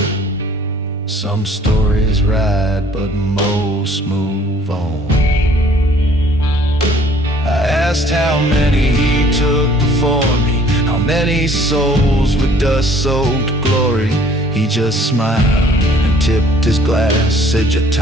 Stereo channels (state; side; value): normal; both; correlation 0.57